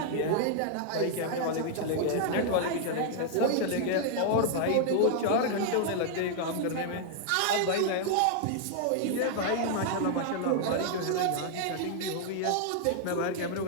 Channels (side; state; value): both; different; correlation -0.01